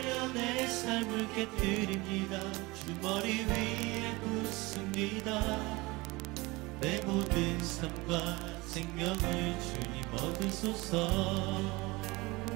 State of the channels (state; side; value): quieter; left; 23.1 dB